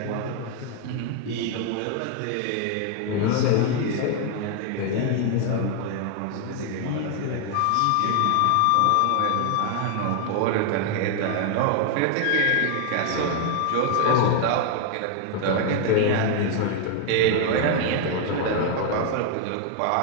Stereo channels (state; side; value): different; both; correlation 0.00